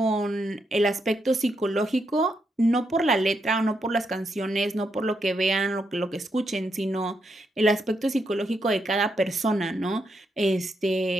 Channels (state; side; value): normal; both; correlation 0.81